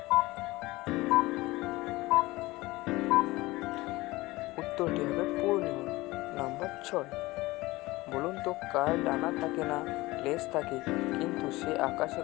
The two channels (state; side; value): quieter; right; 20.1 dB